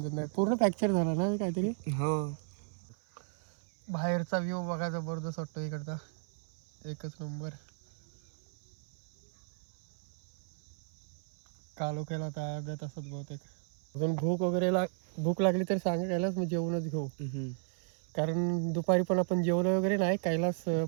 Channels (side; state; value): left; silent; 55 dB below the other